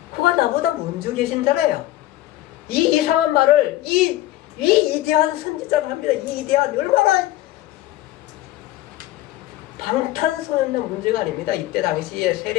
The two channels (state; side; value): quieter; right; 15.5 dB